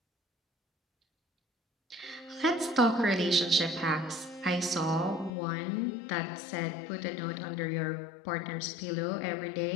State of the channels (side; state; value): right; drops out; at 5.3 s